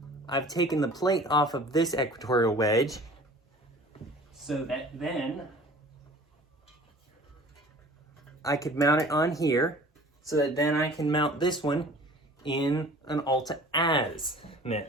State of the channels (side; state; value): both; normal; correlation 0.47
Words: I've taken the plate off of this equatorial wedge so that then I could mount it on here, so that then I can mount this one in an